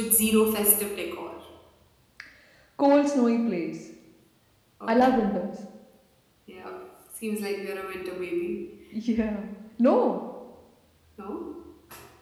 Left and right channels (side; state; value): both; identical; correlation 1.00